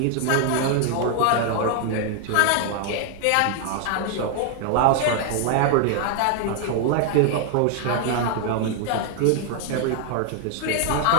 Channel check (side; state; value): both; different; correlation 0.00